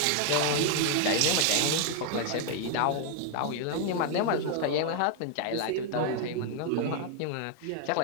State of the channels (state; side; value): different; both; correlation 0.00